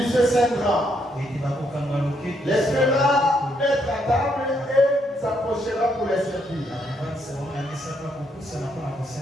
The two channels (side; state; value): both; normal; correlation 0.74